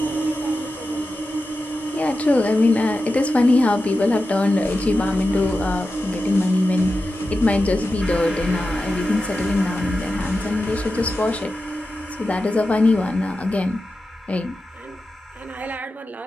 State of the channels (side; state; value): both; normal; correlation 0.92